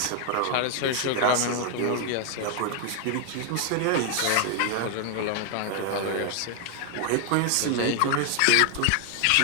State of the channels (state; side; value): different; both; correlation 0.00